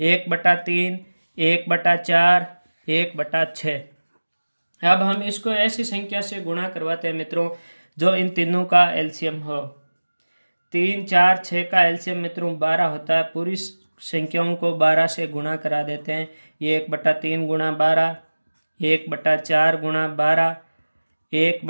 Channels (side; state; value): both; inverted; correlation -1.00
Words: 1/4, 1/6। अब हम इसको ऐसी संख्या से गुणा करवाते हैं मित्रों जो इन तीनों का एलसीएम हो। 3, 4, 6 का एलसीएम मित्रों 12 होता है। पूरी संख्याओं को 12 से गुणा करा देते हैं। ये 1/3 गुणा 12, 1/4 गुणा 12,